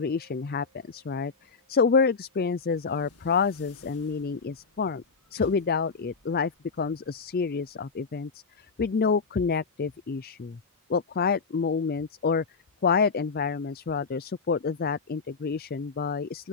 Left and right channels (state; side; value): quieter; right; 4.9 dB